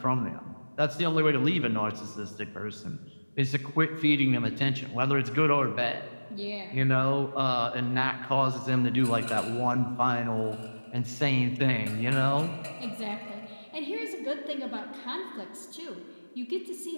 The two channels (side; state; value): both; inverted; correlation -1.00